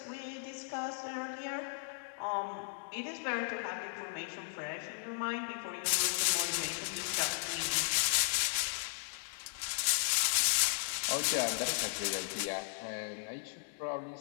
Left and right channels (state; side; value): silent; right; digital silence